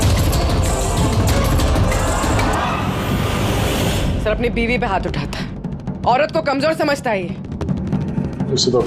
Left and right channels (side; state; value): both; identical; correlation 1.00